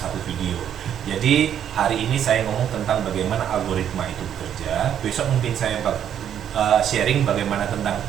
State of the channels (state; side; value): quieter; left; 9.6 dB